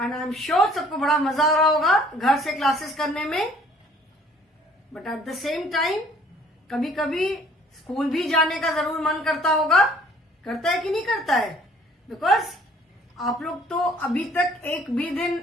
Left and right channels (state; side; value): normal; both; correlation 0.57